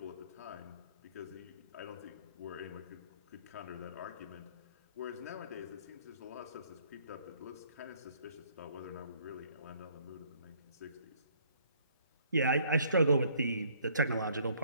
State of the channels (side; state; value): both; inverted; correlation -0.61